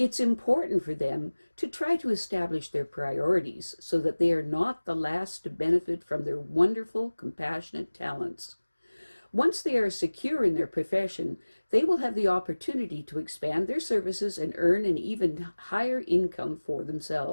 important for them to try to establish their priorities so that they are not the last to benefit from their wonderful, compassionate talents. Once they are secure in their profession, they will have the opportunity to expand their services and earn an even higher income for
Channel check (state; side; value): inverted; both; correlation -1.00